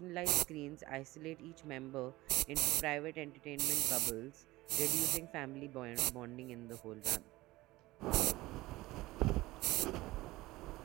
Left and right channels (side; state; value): left; quieter; 19.0 dB